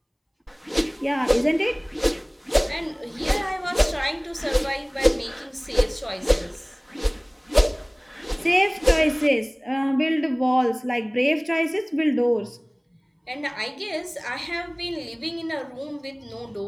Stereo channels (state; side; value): identical; both; correlation 1.00